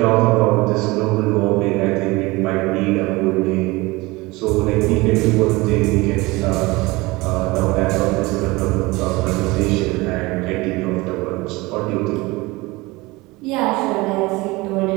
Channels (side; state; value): left; quieter; 22.3 dB